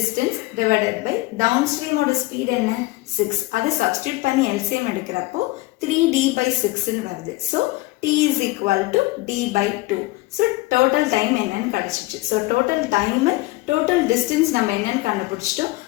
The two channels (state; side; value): quieter; right; 20.6 dB